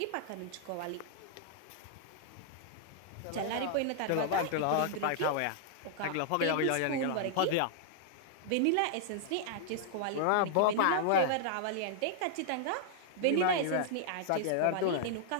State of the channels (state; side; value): different; both; correlation -0.01